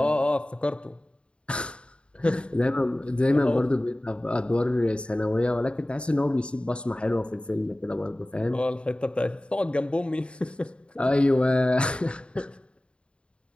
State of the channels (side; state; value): right; late; 0.056 ms